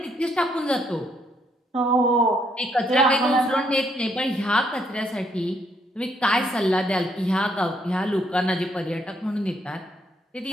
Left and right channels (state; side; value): normal; both; correlation 0.72